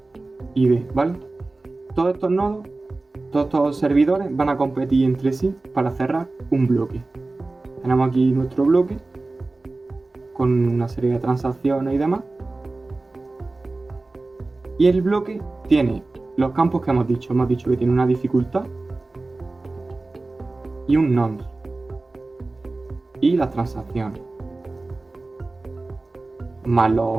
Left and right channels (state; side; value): quieter; left; 3.2 dB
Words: y D, ¿vale? Todos estos nodos, todos estos servidores van a competir entre sí para cerrar un bloque. Tenemos aquí nuestro bloque con una serie de transacciones y demás. Y el bloque tiene los campos que hemos dicho que tiene una dificultad y un nonce y las transacciones, más